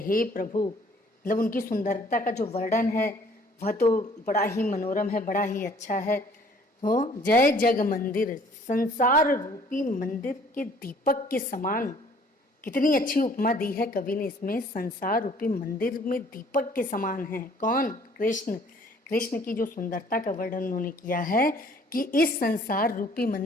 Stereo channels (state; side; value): normal; both; correlation 0.57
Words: प्रभु, मतलब उनकी सुंदरता का जो वर्णन है वह तो बड़ा ही मनोरम है, बड़ा ही अच्छा है। हो जय जग मंदिर, संसार रूपी मंदिर के दीपक के समान। कितनी अच्छी उपमा दी है कवि ने इसमें, संसार रूपी मंदिर में दीपक के समान है कौन? कृष्ण। कृष्ण की जो सुंदरता का वर्णन उन्होंने किया है कि इस संसार रूपी